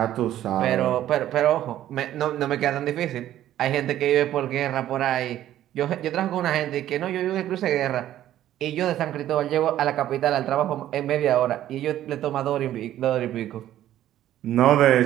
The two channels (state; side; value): quieter; left; 12.5 dB